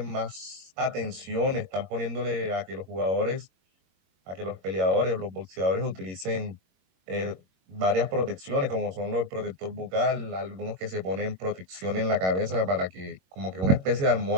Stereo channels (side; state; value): left; late; 21 ms